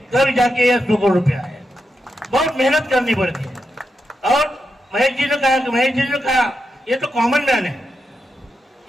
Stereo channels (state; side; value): normal; both; correlation 0.86